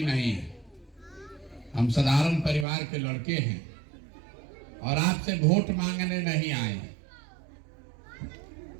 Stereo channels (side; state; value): left; drops out; at 2.7 s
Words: नहीं हैं, हम साधारण परिवार के लड़के हैं और आपसे वोट मांगने नहीं आए हैं।